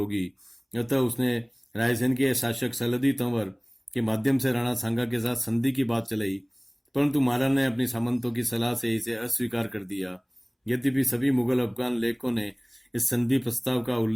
अतः उसने रायसेन के शासक सलदी तंवर के माध्यम से राणा सांगा के साथ संधि की बात चलाई, परंतु महाराणा ने अपनी सामंतों की सलाह से इसे अस्वीकार कर दिया। यद्यपि सभी मुगल अफगान लेखकों ने इस संधि प्रस्ताव का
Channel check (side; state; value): both; identical; correlation 1.00